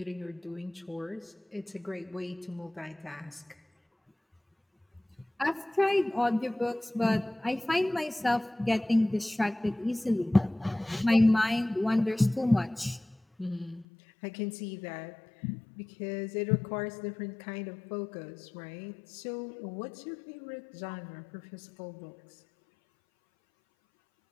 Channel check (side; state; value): right; drops out; at 13.9 s